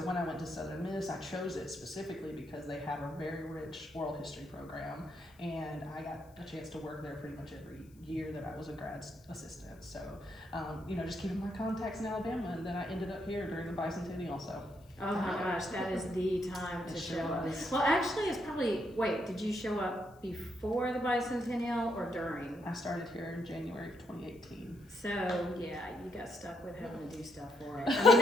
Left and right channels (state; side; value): noise; left; hiss, 30 dB below the sound